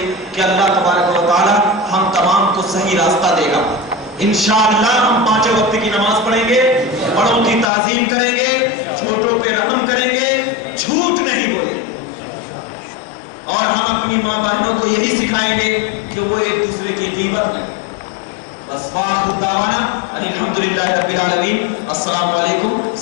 کہ اللہ تبارک و تعالیٰ ہم تمام کو صحیح راستہ دے گا. انشاءاللہ ہم 5 وقت کی نماز پڑھیں گے, بڑوں کی تعظیم کریں گے, چھوٹوں پہ رحم کریں گے, جھوٹ نہیں بولیں گے, اور ہم اپنی ماں بہنوں کو یہی سکھائیں گے کہ وہ ایک دوسرے کی غیبت کریں. بس وآخر دعوانا الحمدللہ رب العالمین. السلام علیکم.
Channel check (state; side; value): drops out; right; at 7.7 s